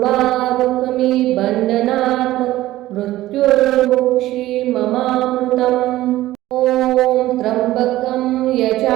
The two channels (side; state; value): left; quieter; 15.8 dB